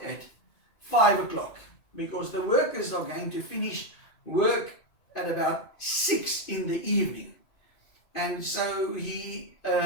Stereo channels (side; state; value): right; late; 2.5 ms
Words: at 5 o'clock, because the workers are going to finish work at about 6 in the evening. And so he